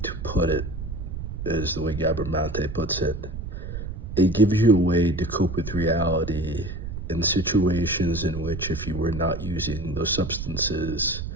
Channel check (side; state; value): right; noise; rumble, 7 dB below the sound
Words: to put it is the way Gabor Mate puts it. It gives you a way to cope with reality in situations in which if you were not using those substances,